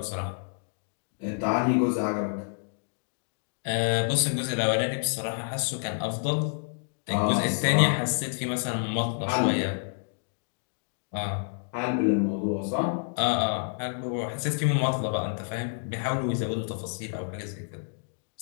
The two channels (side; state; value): right; silent; digital silence